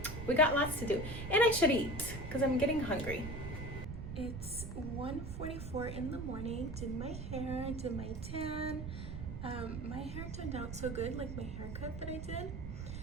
we got lots to do, and I should eat because I'm getting hungry. It's 1:44 in the morning. Did my hair, did my tan. My hair turned out so good, like my haircut that I did.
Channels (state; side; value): noise; right; rumble, 7 dB below the sound